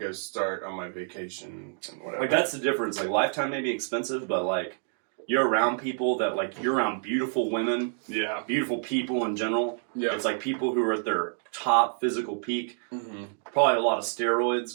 start on my vacation and whatever. Like that's the difference. Like Lifetime may be expensive, but like you're around people that like you're around beautiful women, beautiful people in general. Yeah. It's like people who are at their top physical peak. Mm-hmm. Probably a lot of steroids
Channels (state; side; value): silent; left; digital silence